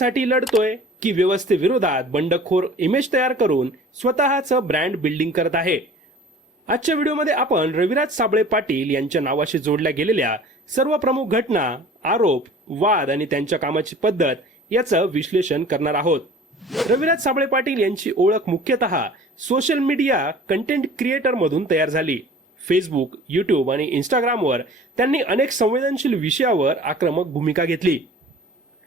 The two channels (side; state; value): both; normal; correlation 0.46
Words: लढतोय की व्यवस्थेविरोधात बंडखोर इमेज तयार करून स्वतःचं ब्रँड बिल्डिंग करत आहे. आजच्या व्हिडिओमध्ये आपण रविराज साबळे पाटील यांच्या नावाशी जोडल्या गेलेल्या सर्व प्रमुख घटना, आरोप, वाद आणि त्यांच्या कामाची पद्धत याचं विश्लेषण करणार आहोत. रविराज साबळे पाटील यांची ओळख मुख्यतः सोशल मीडिया कंटेंट क्रिएटर मधून तयार झाली. फेसबुक, युट्यूब आणि इंस्टाग्रामवर त्यांनी अनेक संवेदनशील विषयावर आक्रमक भूमिका घेतली.